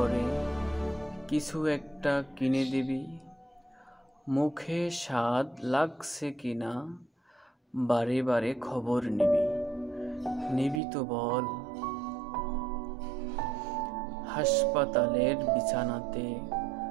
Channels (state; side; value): drops out; left; at 10.8 s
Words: কিছু একটা কিনে দিবি। মুখে স্বাদ লাগছে কিনা বারে বারে খবর নিবি তো বল? হাসপাতালের বিছানাতে